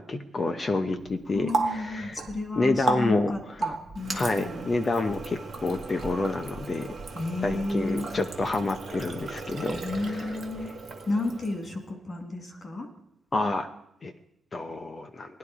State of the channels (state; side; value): normal; both; correlation 0.87